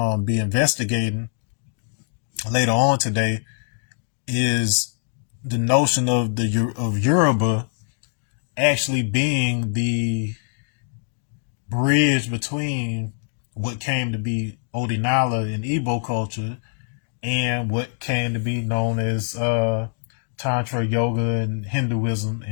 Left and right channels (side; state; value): right; silent; digital silence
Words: be investigating later on today, is the notion of Yoruba actually being the bridge between what came to be Odinala in Igbo culture and what came to be known as Tantra yoga and Hinduism